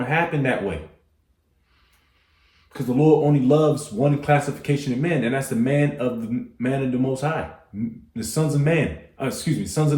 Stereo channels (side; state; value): both; identical; correlation 1.00